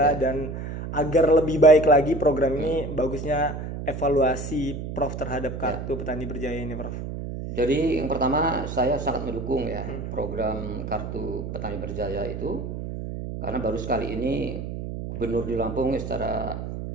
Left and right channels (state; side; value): noise; right; hum, 7 dB below the sound